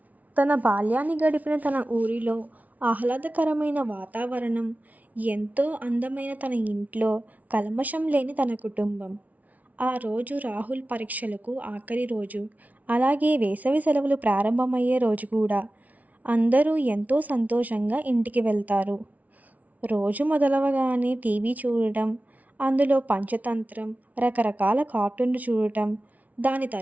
తన బాల్యాన్ని గడిపిన తన ఊరిలో ఆహ్లాదకరమైన వాతావరణం, ఎంతో అందమైన తన ఇంట్లో, కల్మషం లేని తన కుటుంబం. ఆ రోజు రాహుల్ పరీక్షలకు ఆఖరి రోజు. అలాగే వేసవి సెలవులు ప్రారంభమయ్యే రోజు కూడా. అందరూ ఎంతో సంతోషంగా ఇంటికి వెళ్తారు. రోజు మొదలవగానే టీవీ చూడటం, అందులో పంచతంత్రం, రకరకాల కార్టూన్లు చూడటం, దాని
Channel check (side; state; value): left; late; 0.072 ms